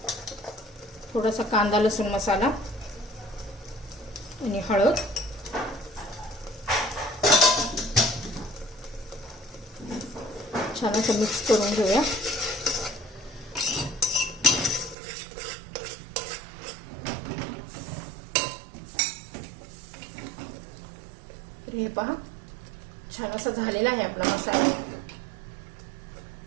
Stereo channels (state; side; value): drops out; left; at 15.0 s